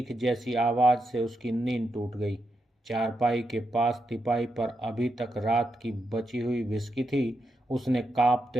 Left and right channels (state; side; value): normal; both; correlation 0.84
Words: जैसी आवाज से उसकी नींद टूट गई। चारपाई के पास तिपाई पर अभी तक रात की बची हुई विस्की थी। उसने कांपते